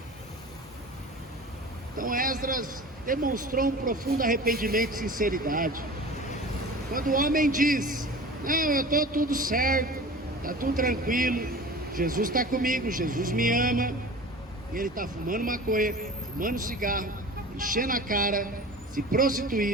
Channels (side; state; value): both; normal; correlation 0.37